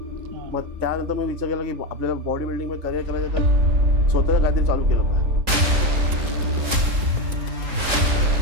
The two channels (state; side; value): late; left; 3.7 ms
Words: मग त्यानंतर मी विचार केला की आपल्याला बॉडी बिल्डिंगमध्ये करिअर करायचं तर स्वतःचं काहीतरी चालू केलं पाहिजे.